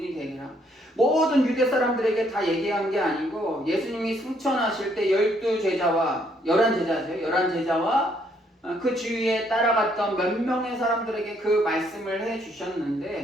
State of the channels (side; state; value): both; normal; correlation 0.69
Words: 되리라. 모든 유대 사람들에게 다 얘기한 게 아니고 예수님이 승천하실 때 11제자와 11제자와 그 주위에 따라갔던 몇 명의 사람들에게 그 말씀을